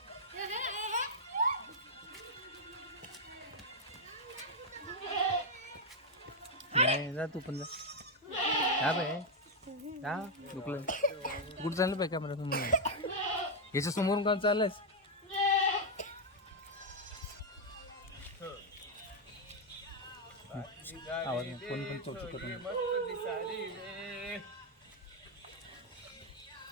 नाही जा तू पण जा बाय जा दुखलं कुठं चाललं पाहिजे कॅमेरा समोर याच्या समोरून का चाललंयस आवाज नाही. कोण पण चौचू करून मस्त दिसारी रे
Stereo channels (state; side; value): normal; both; correlation 0.00